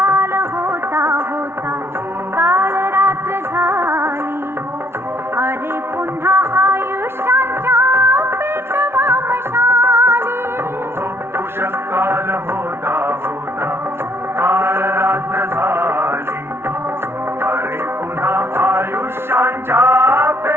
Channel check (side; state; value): left; late; 0.12 ms